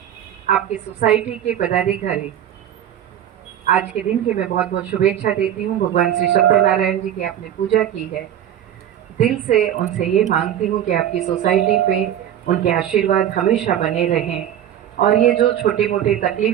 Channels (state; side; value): quieter; left; 10.6 dB